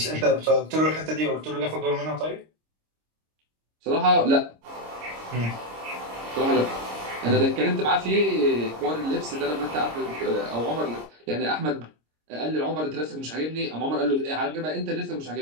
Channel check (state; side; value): late; left; 26 ms